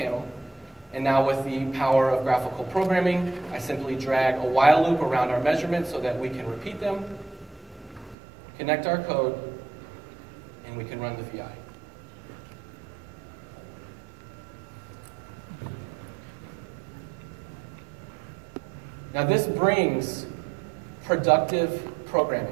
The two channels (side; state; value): left; drops out; at 8.2 s